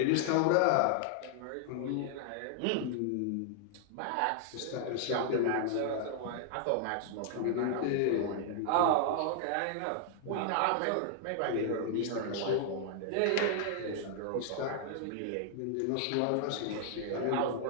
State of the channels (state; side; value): different; both; correlation 0.00